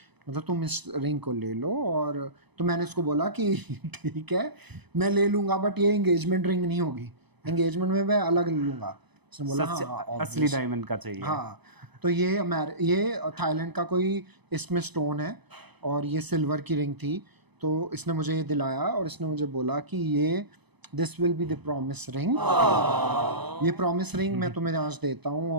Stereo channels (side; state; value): left; late; 0.99 ms